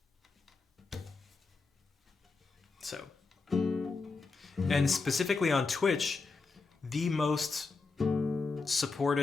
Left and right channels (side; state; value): right; quieter; 4.2 dB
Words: So, and specifically on Twitch, the most